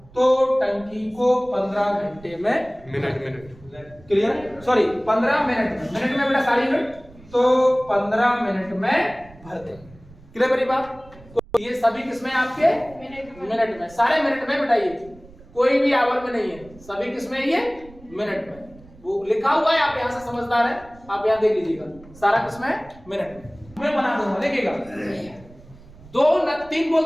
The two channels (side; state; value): right; noise; rumble, 23 dB below the sound